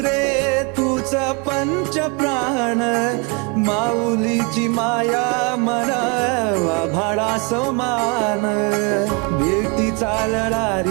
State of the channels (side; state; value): left; quieter; 32.5 dB